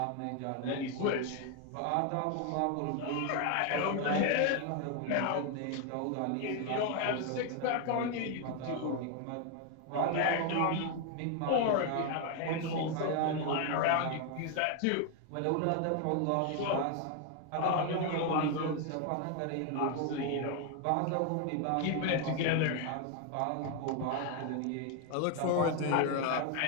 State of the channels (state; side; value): different; both; correlation 0.01